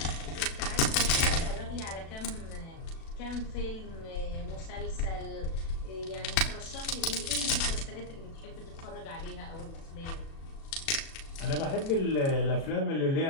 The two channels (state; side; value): late; right; 36 ms